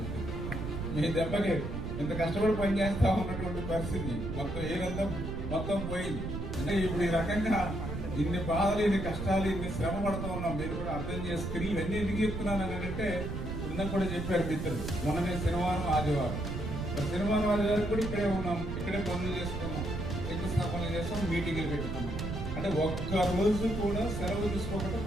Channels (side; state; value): right; noise; rumble, 5 dB below the sound